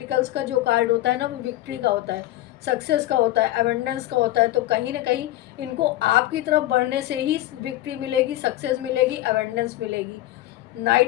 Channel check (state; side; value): quieter; right; 15.4 dB